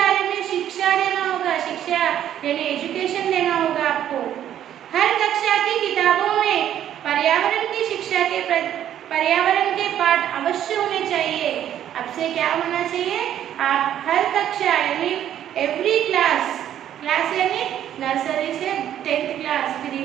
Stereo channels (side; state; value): left; quieter; 10.9 dB